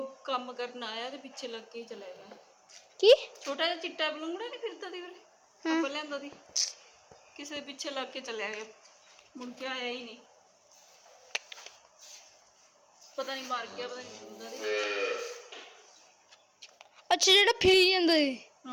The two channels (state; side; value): identical; both; correlation 1.00